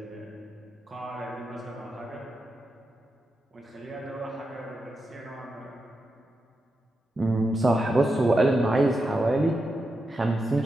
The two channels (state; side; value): normal; both; correlation 0.87